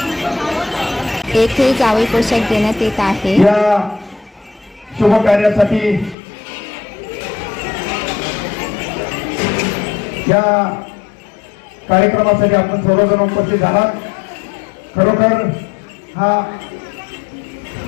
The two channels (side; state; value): right; drops out; at 6.2 s